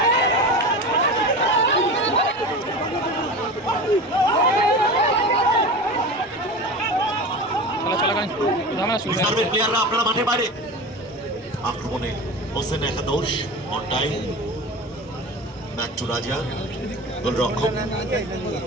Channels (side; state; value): both; normal; correlation 0.30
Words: প্লেয়াররা আপনারা মাঠের বাইরে আক্রমণে হোসেন একাদশ অনটাই ব্যাক টু রাজা গোলরক্ষক